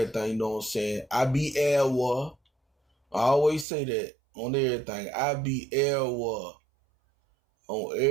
you know what I'm saying? I be Elwa. I always say that on everything. I be Elwa on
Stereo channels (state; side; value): drops out; left; at 3.7 s